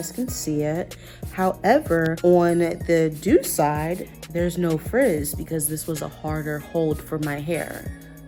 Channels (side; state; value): both; identical; correlation 1.00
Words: can see it. However, on the Doux side, there's no frizz because this was a harder hold for my hair.